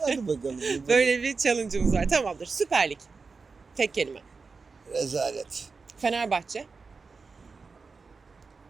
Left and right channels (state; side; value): quieter; left; 4.5 dB